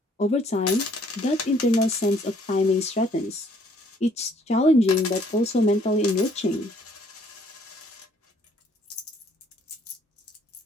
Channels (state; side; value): normal; both; correlation 0.63